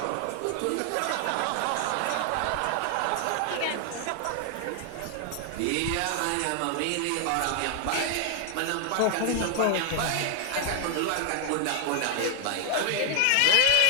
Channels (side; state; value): both; different; correlation 0.00